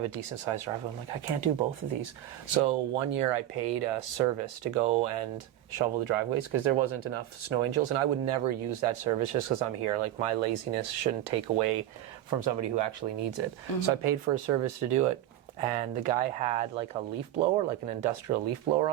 a decent sized driveway, I'm like, I can't do both of these. So one year I paid a service to go and shovel the driveways because there wasn't enough snow angels, and I would never use that service just because I'm here. Like, my laziness shouldn't take away from somebody who actually needs it. So I paid for a service to do it, and the guy had like a leaf blower, like an industrial leaf blower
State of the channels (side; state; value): left; quieter; 13.1 dB